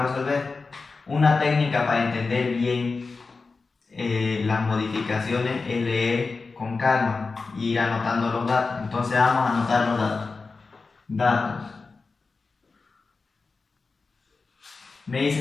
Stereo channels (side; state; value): right; quieter; 4.2 dB